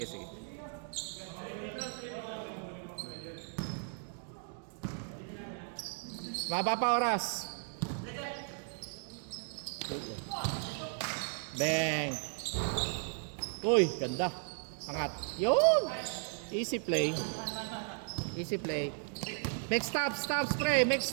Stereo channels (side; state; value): left; silent; 54 dB below the other